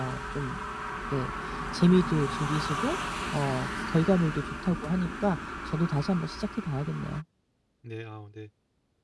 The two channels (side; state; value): both; identical; correlation 1.00